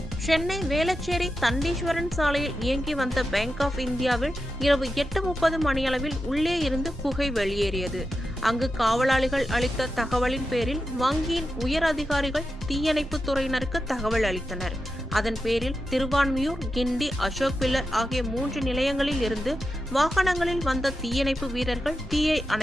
சென்னை வேளச்சேரி தண்டீஸ்வரன் சாலையில் இயங்கி வந்த பேங்க் ஆஃப் இந்தியாவில் இரவு 8:30 மணியளவில் உள்ளே இருந்து புகை வெளியேறியது. அங்கு காவலாளிகள் அளித்த தகவலின் பேரில் வங்கியின் உயர் அதிகாரிகள் தீயணைப்பு துறையினருக்கு தகவல் அளித்தனர். அதன் பேரில் திருவான்மியூர், கிண்டி, அசோக் பில்லர் ஆகிய 3 நிலையங்களில் இருந்து வாகனங்களில் வந்த தீயணைப்பு வீரர்கள் தீயை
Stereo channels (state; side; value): normal; both; correlation 0.90